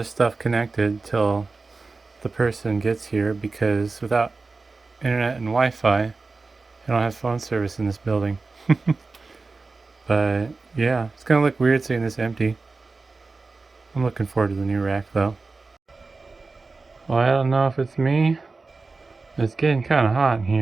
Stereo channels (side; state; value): left; quieter; 3.9 dB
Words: stuff connected till the person gets here because without internet and Wi-Fi, I don't have phone service in this building. But yeah, it's gonna look weird seeing this empty. I'm looking forward to the new rack though. Well, I don't know if it's me. It's getting kind of hot in